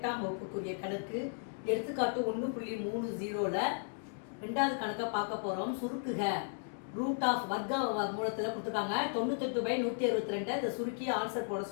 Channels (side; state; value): right; silent; digital silence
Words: வகுப்புக்குரிய கணக்கு. எடுத்துக்காட்டு 1.30ல் ரெண்டாவது கணக்கை பார்க்க போகிறோம். சுருக்குக. ரூட் ஆஃப் வர்க்க மூலத்தில் கொடுத்துருக்காங்க. 98/162 இதை சுருக்கி ஆன்சர் போட